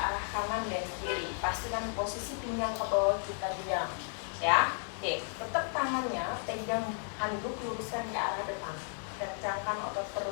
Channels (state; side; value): silent; right; 55 dB below the other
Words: kanan dan kiri. Pastikan posisi pinggang ke bawah kita diam, ya. Oke, tetap tangannya pegang handuk, luruskan ke arah depan. Kencangkan otot